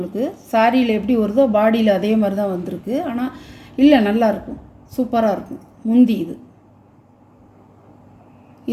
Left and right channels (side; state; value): both; identical; correlation 1.00